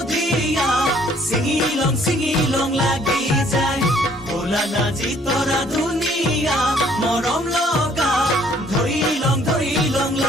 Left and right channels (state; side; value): normal; both; correlation 0.61